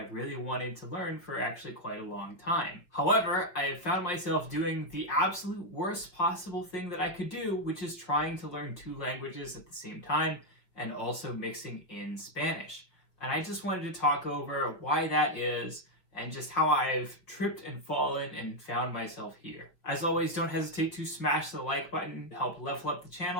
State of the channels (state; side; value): late; right; 5.4 ms